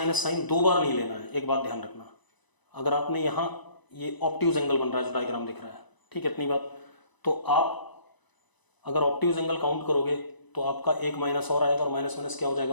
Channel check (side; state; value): right; late; 1.0 ms